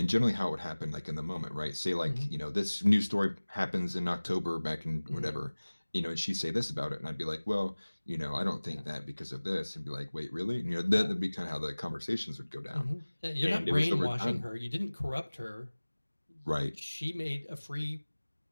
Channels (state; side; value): inverted; both; correlation -1.00